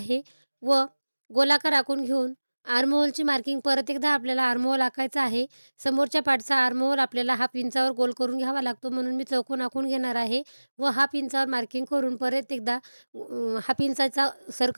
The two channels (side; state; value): both; inverted; correlation -1.00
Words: व गोलाकार आखून घेऊन आर्महोलची मार्किंग परत एकदा आपल्याला आर्महोल आखायचा आहे. समोरच्या पार्टचा आर्महोल आपल्याला हाफ इंचावर गोल करून घ्यावा लागतो, म्हणून मी चौकोन आखून घेणार आहे व हाफ इंचावर मार्किंग करून परत एकदा हाफ इंचाचा